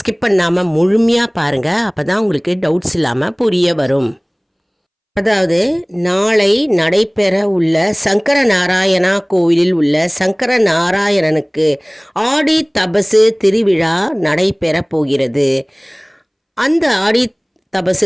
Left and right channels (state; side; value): identical; both; correlation 1.00